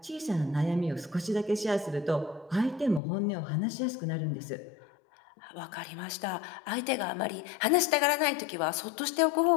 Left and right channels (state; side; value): drops out; right; at 3.0 s